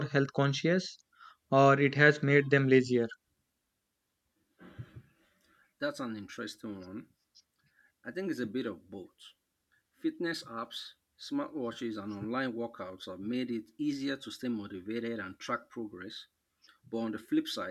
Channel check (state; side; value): identical; both; correlation 1.00